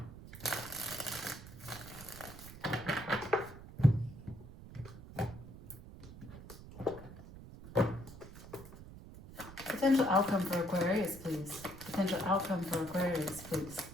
Potential outcome for Aquarius, please. Potential outcome for Aquarius, please.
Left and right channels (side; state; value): right; noise; rumble, 15 dB below the sound